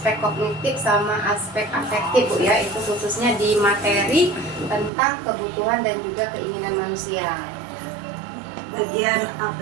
kognitif sama aspek afektif Bu ya, itu khususnya di materi tentang kebutuhan dan juga keinginan manusia. Bagian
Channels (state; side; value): drops out; left; at 4.9 s